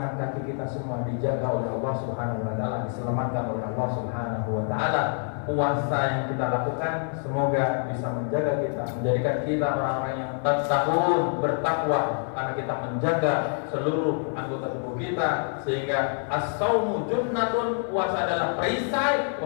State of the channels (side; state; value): right; silent; 61 dB below the other